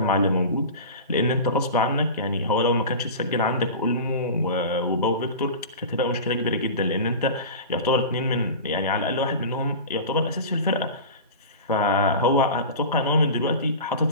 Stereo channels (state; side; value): inverted; both; correlation -0.31